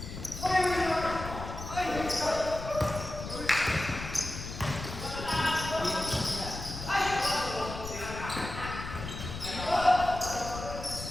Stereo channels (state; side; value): noise; left; rumble, 9 dB below the sound